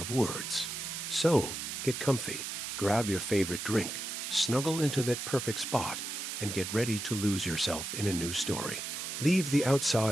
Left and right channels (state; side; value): noise; right; hiss, 5 dB below the sound